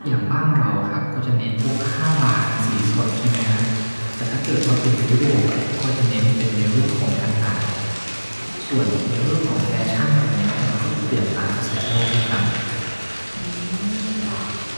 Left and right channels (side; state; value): both; inverted; correlation -1.00